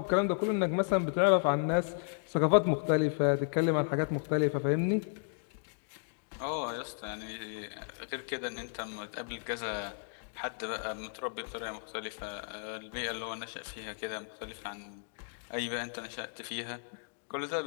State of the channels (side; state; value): right; silent; digital silence